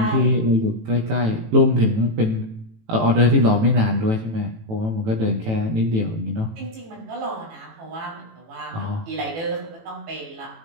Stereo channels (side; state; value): left; late; 18 ms